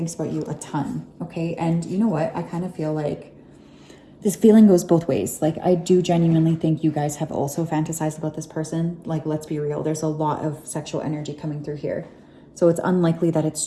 about you a ton, okay? And you know what? I kind of feel like this feeling goes both ways. Like, I do genuinely think you guys have also fantasized about this person. Like, let's be real. There's a lot of sexual energy coming through here. So it's unlikely that it's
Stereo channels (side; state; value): both; identical; correlation 1.00